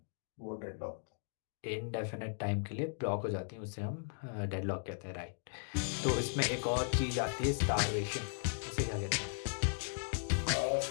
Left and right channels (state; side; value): silent; right; digital silence